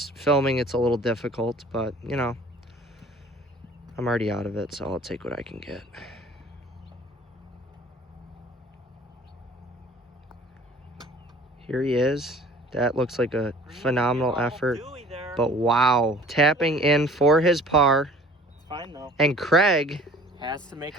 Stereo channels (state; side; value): normal; both; correlation 0.49